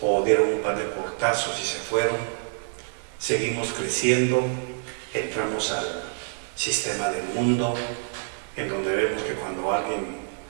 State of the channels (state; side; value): silent; left; 61 dB below the other